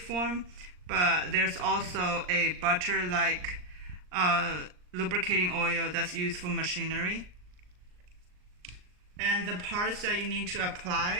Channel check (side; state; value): left; late; 39 ms